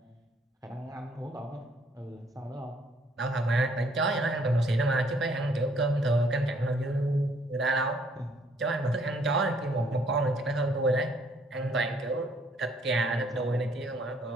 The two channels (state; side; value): normal; both; correlation 0.65